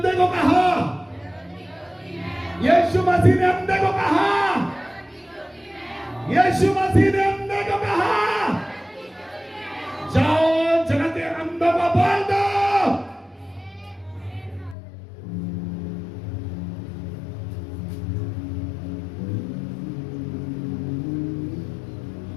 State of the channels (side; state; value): right; drops out; at 14.8 s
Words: को कहा, यीशु मसीह ने अंधे को कहा, यीशु मसीह ने अंधे को कहा जाओ जगत के अंधों को बोल दो।